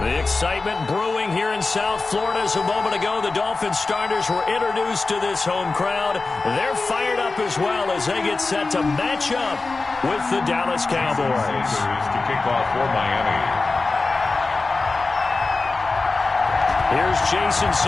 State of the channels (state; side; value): quieter; right; 3.7 dB